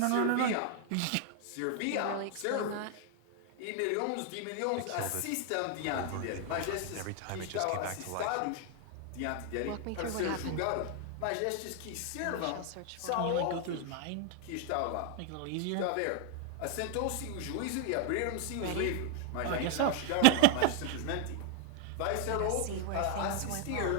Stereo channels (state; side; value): different; both; correlation 0.00